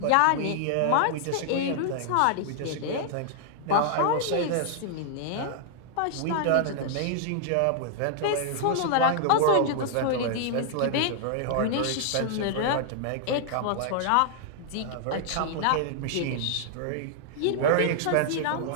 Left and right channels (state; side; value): different; both; correlation -0.01